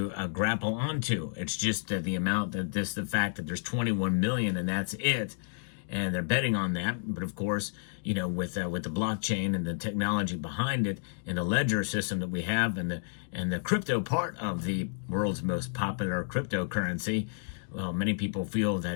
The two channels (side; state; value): right; silent; digital silence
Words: grapple onto. It's just the amount that the fact that there's 21 million and that's it. And they're betting on that. But of course, you know, with the blockchain and the technology behind it and the ledger system that we have and the crypto part of the world's most popular cryptocurrency, well, many people feel